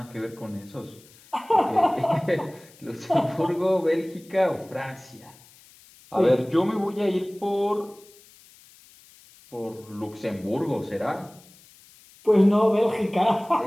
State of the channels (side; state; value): left; noise; hiss, 25 dB below the sound